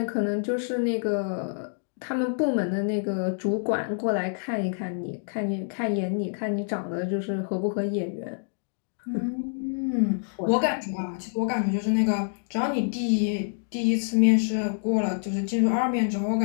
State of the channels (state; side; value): silent; right; digital silence